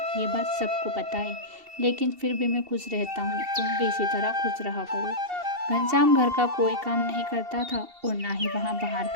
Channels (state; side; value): late; left; 2.7 ms